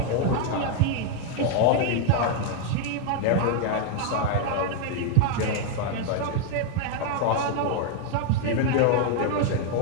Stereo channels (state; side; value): different; both; correlation 0.00